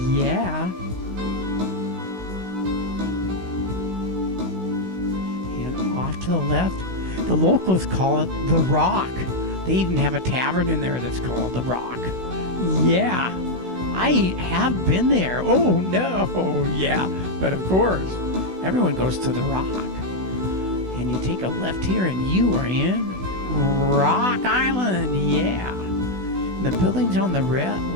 Yeah. And off to the left, the locals call it The Rock. They even have a tavern in there that's called The Rock. Yeah. I have been there. Oh, no. Yeah. But of course, everyone goes to The Rock. And you take a left here and you are in Rock Island, yeah. The buildings on the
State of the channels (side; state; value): left; late; 16 ms